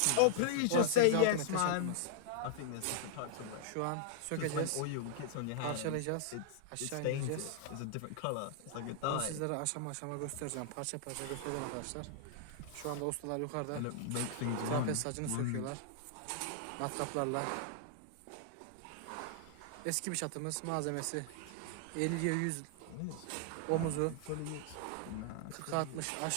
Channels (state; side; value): different; both; correlation -0.01